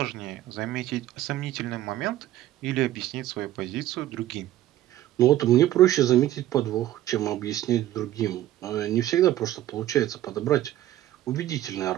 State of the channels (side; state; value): left; quieter; 13.8 dB